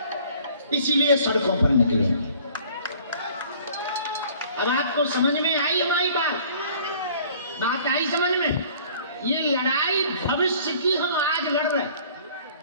इसीलिए सड़कों पर निकलेंगे। अब आपको समझ में आई हमारी बात आई समझ में? ये लड़ाई भविष्य की हम आज लड़ रहे हैं।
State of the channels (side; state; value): both; inverted; correlation -0.53